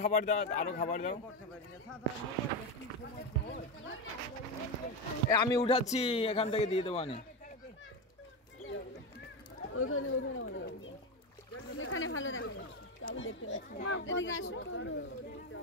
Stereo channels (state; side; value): normal; both; correlation 0.14